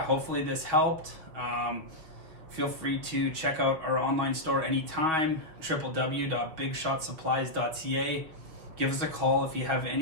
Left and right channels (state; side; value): late; left; 6.2 ms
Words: hopefully this helped. Feel free to check out our online store anytime, www.bigshotsupplies.ca. Give us a call if you have